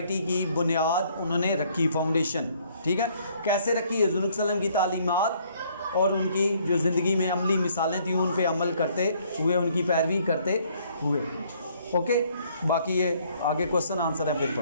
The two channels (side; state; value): both; inverted; correlation -0.64